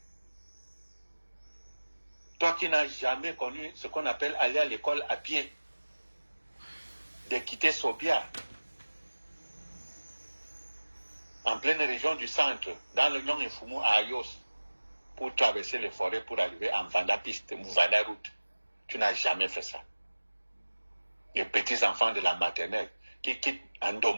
toi qui n'as jamais connu ce qu'on appelle aller à l'école à pied, de quitter Sobia, en pleine région du centre, dans le Nyon et Fumu à Ayos, pour traverser les forêts pour arriver en Vanda Piste, Vanda Route. Tu n'as jamais fait ça. Les petits enfants de la maternelle qui quittent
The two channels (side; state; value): both; inverted; correlation -1.00